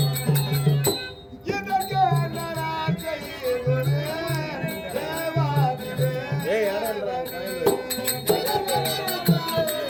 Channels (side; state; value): both; identical; correlation 1.00